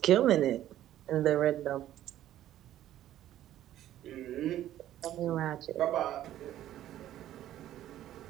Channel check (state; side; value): quieter; left; 12.7 dB